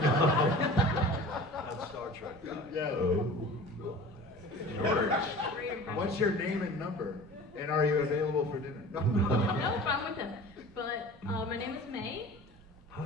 That's Star Trek guy. Yeah. Oh my. George, what's your name and number? And are you available for dinner? No. Nope, I'm with him. But my name is May.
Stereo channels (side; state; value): both; normal; correlation 0.40